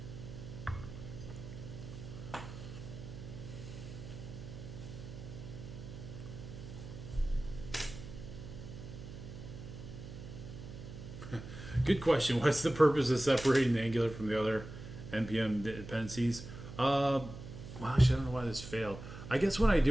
Good question. What's the purpose of separating the Angular from the other NPM dependencies? Well, actually, I don't know why this failed. I guess when I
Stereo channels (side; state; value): right; noise; hum, 11 dB below the sound